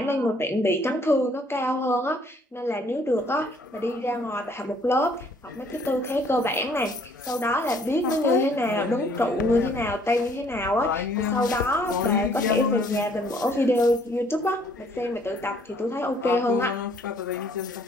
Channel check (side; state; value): both; normal; correlation 0.62